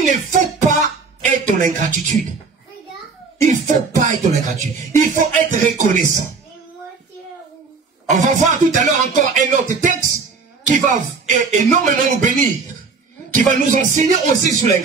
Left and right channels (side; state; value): left; quieter; 4.7 dB